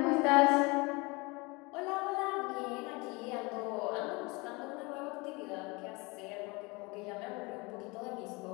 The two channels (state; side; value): quieter; right; 26.2 dB